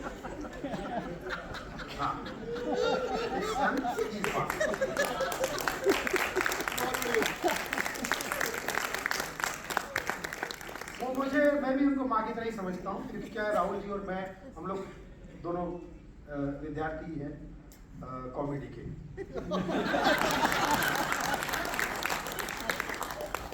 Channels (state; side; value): identical; both; correlation 1.00